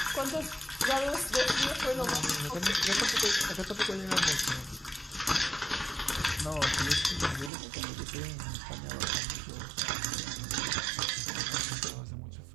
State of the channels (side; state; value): left; drops out; at 7.5 s